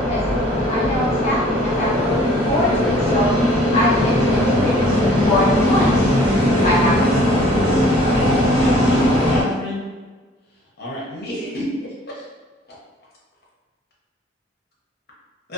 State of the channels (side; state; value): both; normal; correlation 0.54